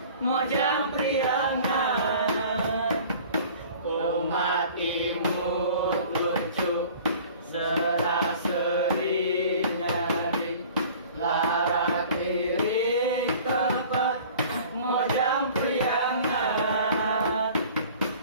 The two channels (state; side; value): inverted; both; correlation -0.46